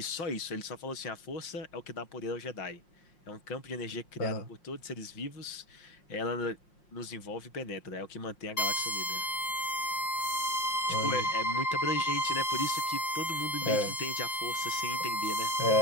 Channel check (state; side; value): late; right; 5.6 ms